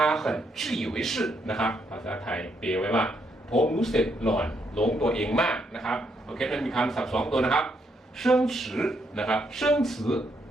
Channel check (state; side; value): normal; both; correlation 0.75